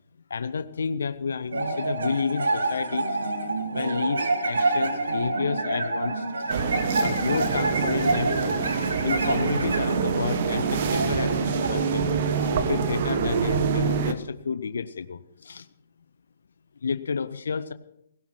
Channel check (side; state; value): both; inverted; correlation -0.68